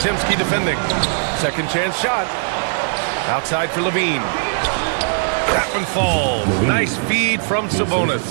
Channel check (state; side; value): silent; left; digital silence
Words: defending. Second chance shot. Outside for LaVine. That one falls. Nice feed from